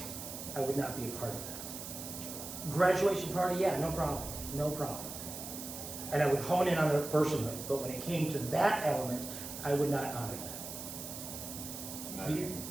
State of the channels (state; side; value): noise; right; hiss, 9 dB below the sound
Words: I would not be a part of that. Graduation party, yeah, no problem. And I would hone in on their personhood, but when it came to that element, I would not honor that. Not even